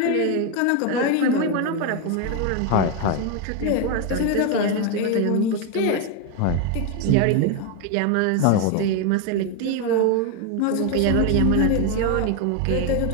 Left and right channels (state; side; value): different; both; correlation 0.01